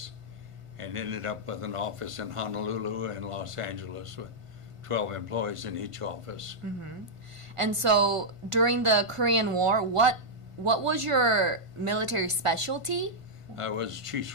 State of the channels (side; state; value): left; late; 1.5 ms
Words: and ended up with an office in Honolulu and Los Angeles with 12 employees in each office. And so during the Korean War, what was your military specialty? I was chief